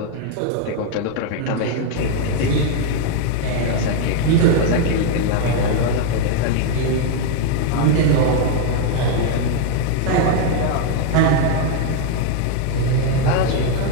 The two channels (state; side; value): different; both; correlation 0.00